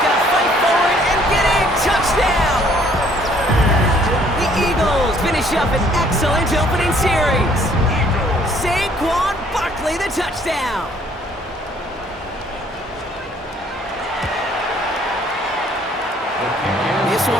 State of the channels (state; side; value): normal; both; correlation 0.61